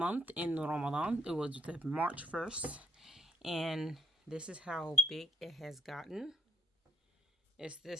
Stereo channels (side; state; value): both; normal; correlation 0.77